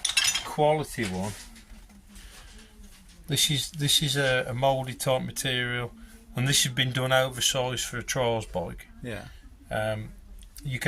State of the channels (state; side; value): identical; both; correlation 1.00